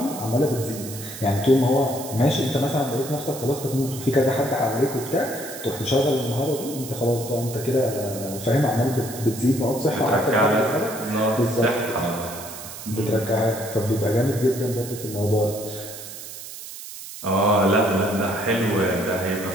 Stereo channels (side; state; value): right; noise; hiss, 12 dB below the sound